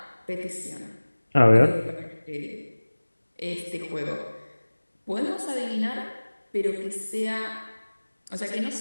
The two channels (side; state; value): both; inverted; correlation -1.00